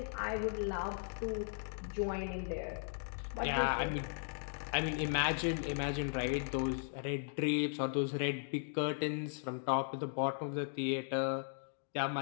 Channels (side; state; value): right; silent; digital silence